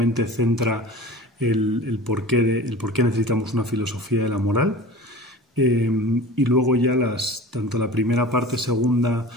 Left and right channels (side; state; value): both; normal; correlation 0.37